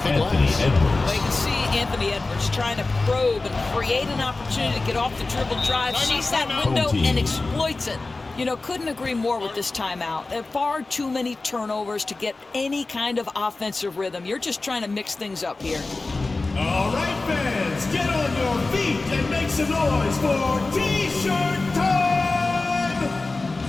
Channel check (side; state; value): right; quieter; 3.4 dB